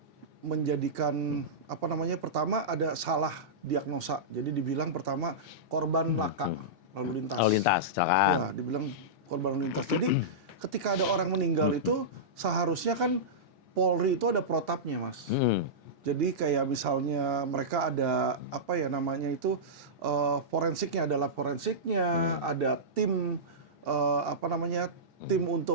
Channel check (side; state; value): both; normal; correlation -0.14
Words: menjadikan pertama ada salah diagnosa. Jadi dibilang pertama korban laka lalu lintas. Lalu lintas, kecelakaan. Ya, dibilang korban lalu lintas. Jadi ketika ada orang meninggal itu seharusnya kan Polri itu ada protapnya, Mas. Jadi kayak misalnya mereka ada forensiknya, adalah forensiknya, ada tim tim